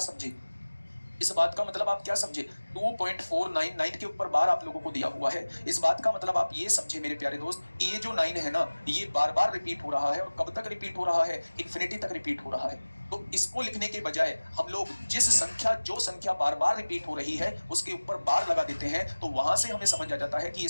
इस बात का मतलब आप क्या समझे? 2.499 के ऊपर बार आप लोगों को दिया हुआ है। इस बात का मतलब आप ये समझे मेरे प्यारे दोस्त, ये जो 9 है ना, ये बार बार रिपीट हो रहा है। और कब तक रिपीट हो रहा है? इन्फिनिटी तक रिपीट हो रहा है। तो इसको लिखने के बजाय हम लोग जो संख्या बार बार रिपीट हो रही है उसके ऊपर बार लगा देते हैं, तो वहां से हमें समझ आ जाता है कि ये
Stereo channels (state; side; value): inverted; both; correlation -1.00